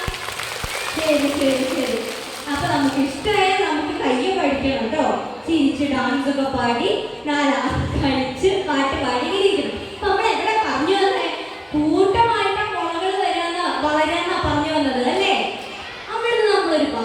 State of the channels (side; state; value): both; identical; correlation 1.00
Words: ശരി ശരി ശരി. അപ്പൊ നമുക്ക് ഇഷ്ടമായ നമുക്ക് കയ്യെ പഠിക്കണം കേട്ടോ. ചിരിച്ച് ഡാൻസ് ഒക്കെ പാടി 4 കളിച്ച് പാട്ട് പാടി ഇരിക്കണം. അപ്പൊ നമ്മൾ എവിടെ പറഞ്ഞു വന്നേ? കൂട്ടമായിട്ട് മുളകൾ വളരാന്നാ പറഞ്ഞു വന്നത് അല്ലേ? അവിടുന്ന് നമ്മളൊരു